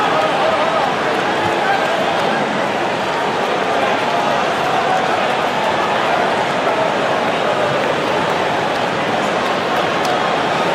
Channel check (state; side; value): identical; both; correlation 1.00